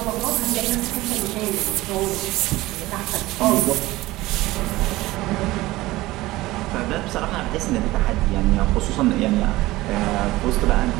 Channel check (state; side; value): quieter; left; 18.5 dB